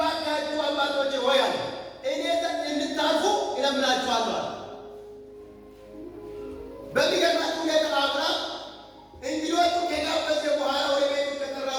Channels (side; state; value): both; identical; correlation 1.00